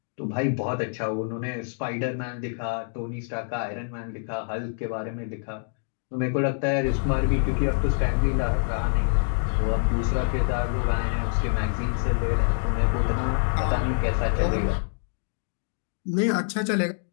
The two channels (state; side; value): silent; right; digital silence